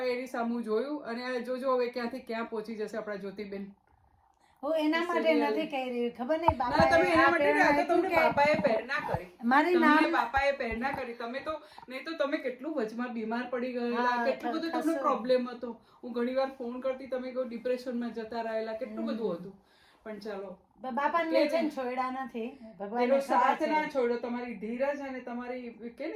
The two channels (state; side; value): identical; both; correlation 1.00